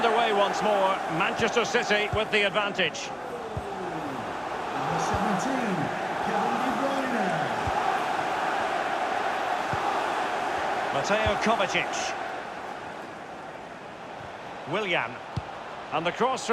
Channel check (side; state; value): both; identical; correlation 1.00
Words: once more. Manchester City with the advantage. Number 17, Kevin Mateo Kovacic. Willian. And the cross